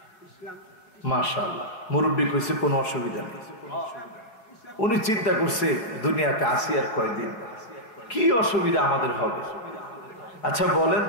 মাশাআল্লাহ, মুরব্বী কইছে কোনো অসুবিধা নেই। উনি চিন্তা করছে দুনিয়াতে আসি আর কয়দিন, কি অসুবিধা আমাদের হবে? আচ্ছা বলেন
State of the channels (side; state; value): right; late; 4.6 ms